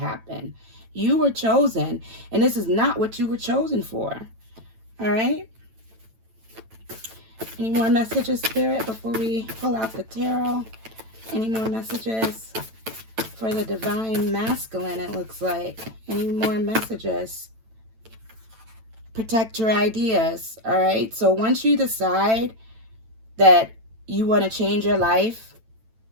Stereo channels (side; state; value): left; late; 9.0 ms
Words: You were chosen, and this is not what you were chosen for. All right? Any more messages, Spirit, before we pull out the tarot? Any more messages for the divine masculine, it looks like? Any more messages? Protect your ideas, all right? So once you decide that you want to change your life,